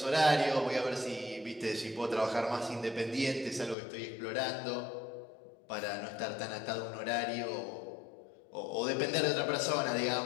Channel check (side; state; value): right; drops out; at 3.8 s